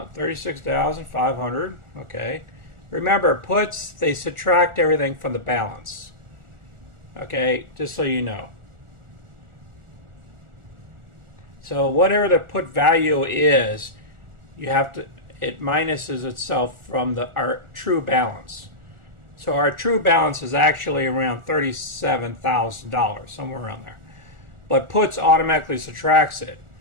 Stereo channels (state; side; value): late; left; 1.4 ms